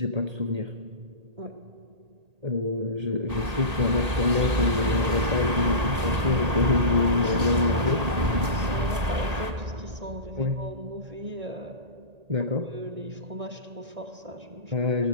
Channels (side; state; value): left; late; 1.8 ms